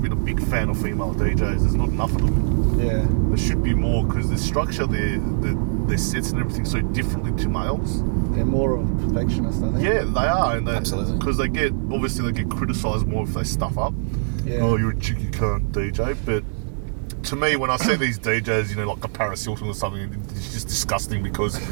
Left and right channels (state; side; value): silent; left; digital silence